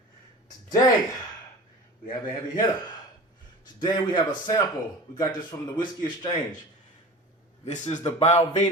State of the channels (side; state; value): both; normal; correlation 0.36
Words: Today, we have a heavy hitter. Today we have a sample. We got this from the Whiskey Exchange. This is the